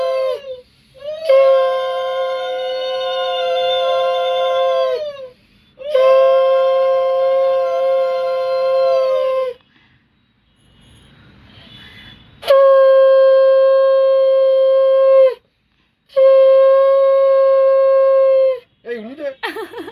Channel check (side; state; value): both; identical; correlation 1.00